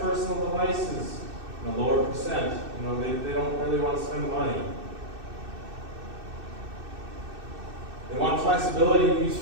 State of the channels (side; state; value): left; late; 2.6 ms